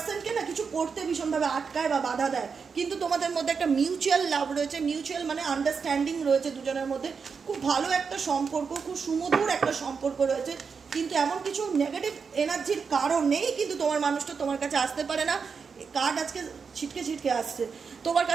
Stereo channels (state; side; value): quieter; left; 5.7 dB